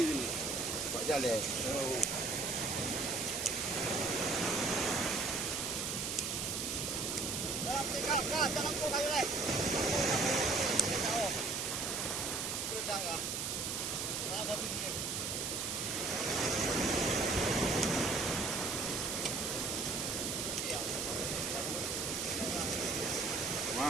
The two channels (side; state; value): right; noise; hiss, 2 dB below the sound